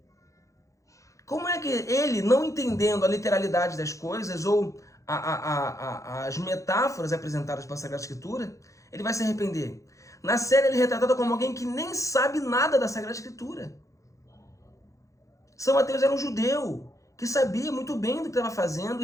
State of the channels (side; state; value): right; late; 0.15 ms